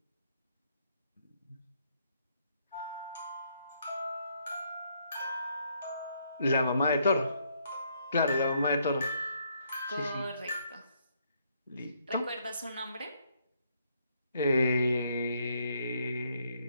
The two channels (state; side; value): inverted; both; correlation -0.72